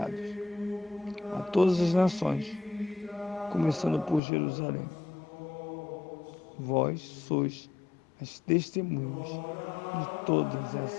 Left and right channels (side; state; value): right; drops out; at 4.2 s